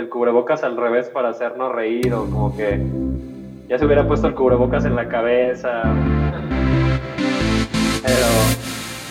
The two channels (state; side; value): identical; both; correlation 1.00